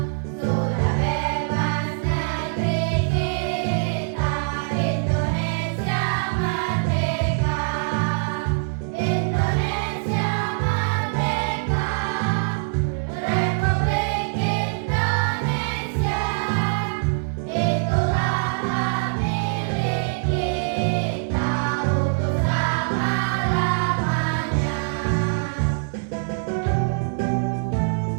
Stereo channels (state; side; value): silent; left; digital silence